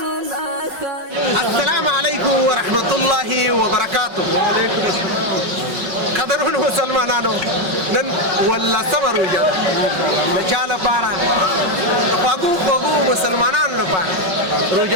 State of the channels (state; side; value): late; left; 5.4 ms